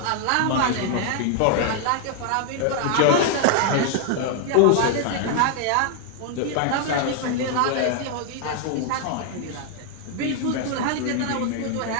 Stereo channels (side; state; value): both; different; correlation 0.00